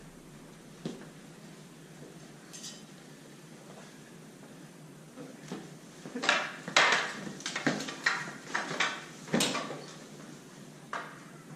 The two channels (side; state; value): both; identical; correlation 1.00